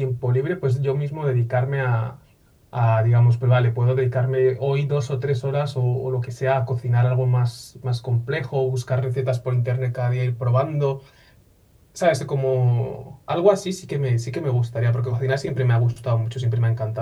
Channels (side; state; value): both; identical; correlation 1.00